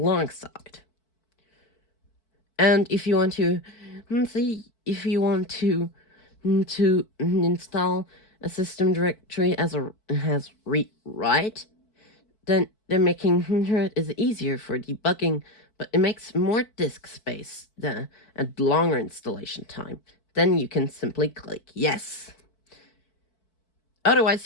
And if you want to install a system directory as read-write, then making it is easier for debugging, but it makes more disk space and longer installation time. Then you can simply click yes. Otherwise,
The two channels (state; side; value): late; right; 4.6 ms